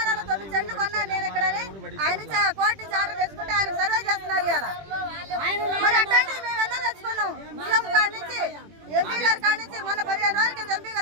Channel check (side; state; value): left; late; 20 ms